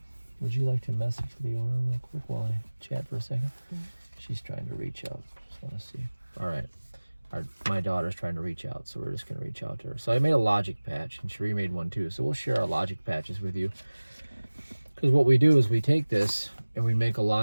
Would you like to message the owner real quick while I chat for a second? Mm-hmm. She's trying to reach out. Just want to see. All right. My daughter's trying to reach out, so we're just going to reach out to her. So I made a logic patch, and Cherie made one too. So we'll share our logic patches with you. Because what we do is we take this and we make a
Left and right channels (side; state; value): both; inverted; correlation -1.00